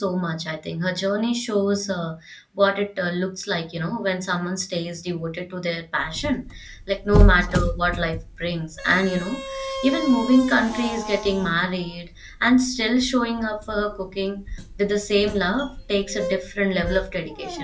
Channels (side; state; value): both; identical; correlation 1.00